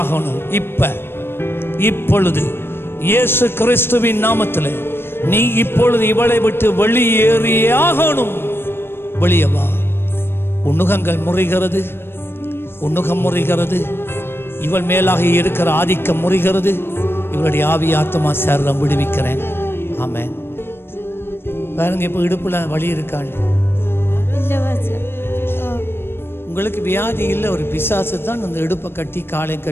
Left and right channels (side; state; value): right; late; 0.11 ms